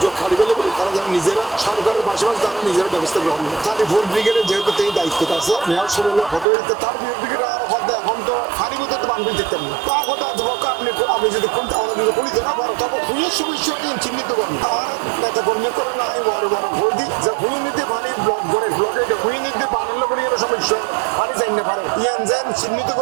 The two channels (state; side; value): drops out; left; at 6.5 s